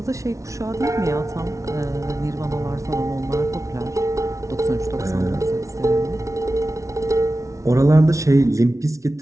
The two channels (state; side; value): late; left; 0.15 ms